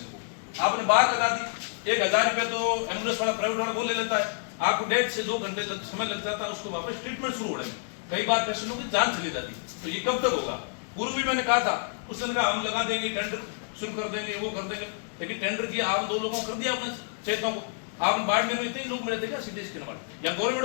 को। आपने बाहर लगा दी, 1000 रुपये तो एम्बुलेंस वाला प्राइवेट वाला वो ले लेता है, आपको 1.5 से 2 घंटे तक समय लग जाता है उसको वापस ट्रीटमेंट शुरू होने में। कई बार पेशेंटों की जान चली जाती, तो ये कब तक होगा? पूर्व भी मैंने कहा था, उस दिन हम लगा देंगे, टेंडर शुरू कर देंगे, वो कर देंगे, लेकिन टेंडर किया आप 2 लोगों को कर दिया अपने चेतों को। आप बाड़मेर में इतने लोग मिले थे क्या सीटी स्कैन वाले या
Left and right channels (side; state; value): right; silent; digital silence